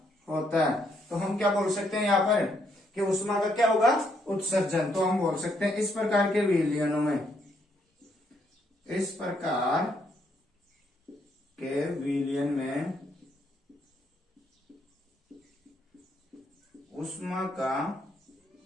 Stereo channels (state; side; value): normal; both; correlation 0.73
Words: होता है। तो हम क्या बोल सकते हैं यहाँ पर कि ऊष्मा का क्या होगा, उत्सर्जन। तो हम बोल सकते हैं इस प्रकार के विलयनों में, इस प्रकार के विलयन में ऊष्मा का